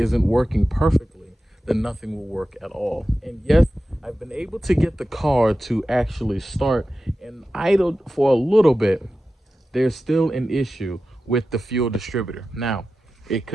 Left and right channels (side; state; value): both; normal; correlation 0.93